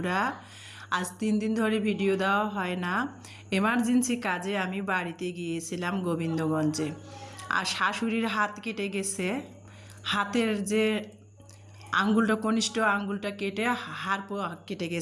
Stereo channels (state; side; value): identical; both; correlation 1.00